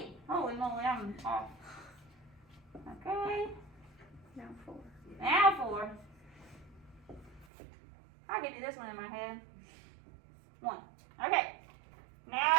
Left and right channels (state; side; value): drops out; left; at 7.5 s